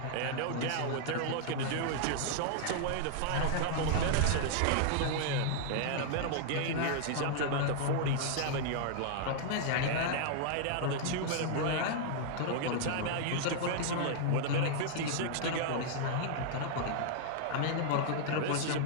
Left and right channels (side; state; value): both; different; correlation -0.01